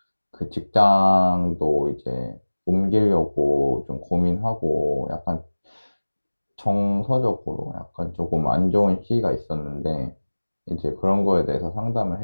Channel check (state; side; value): inverted; both; correlation -1.00